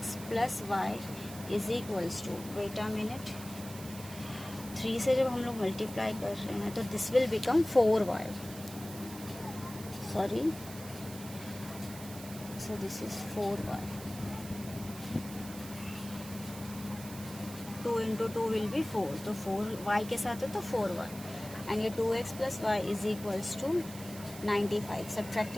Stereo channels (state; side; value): noise; right; hiss, 14 dB below the sound